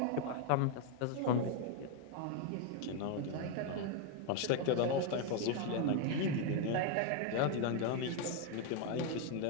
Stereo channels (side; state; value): both; different; correlation 0.01